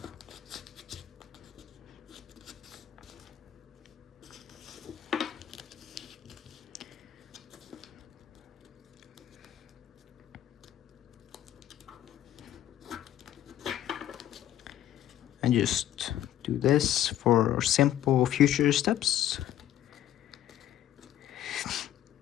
And just do this for simple future steps.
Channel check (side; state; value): right; quieter; 11.9 dB